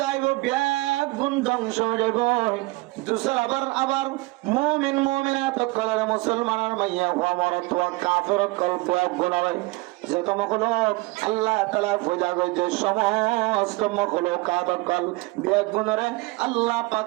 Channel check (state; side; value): quieter; left; 23.1 dB